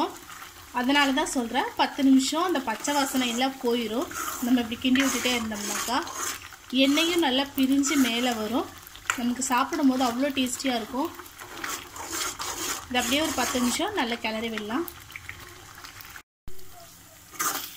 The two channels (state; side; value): identical; both; correlation 1.00